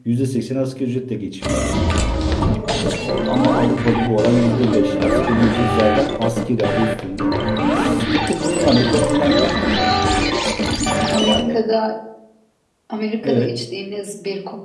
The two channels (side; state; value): both; identical; correlation 1.00